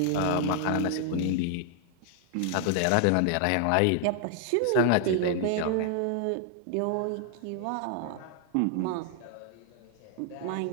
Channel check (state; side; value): different; both; correlation 0.00